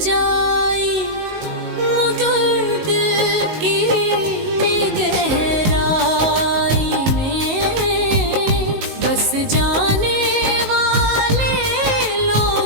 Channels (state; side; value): late; left; 19 ms